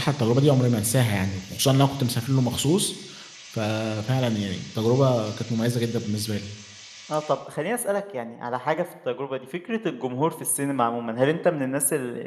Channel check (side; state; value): both; identical; correlation 1.00